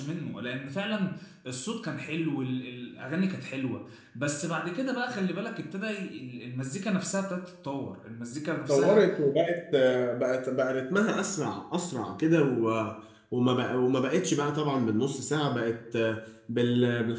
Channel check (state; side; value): identical; both; correlation 1.00